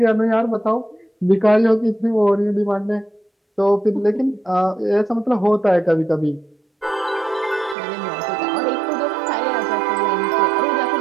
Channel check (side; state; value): left; drops out; at 7.8 s